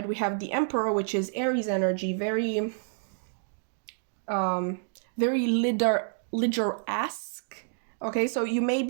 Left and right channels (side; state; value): left; silent; digital silence